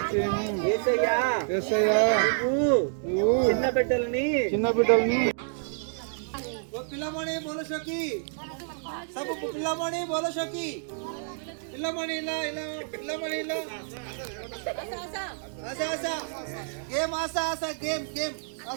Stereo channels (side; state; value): left; silent; digital silence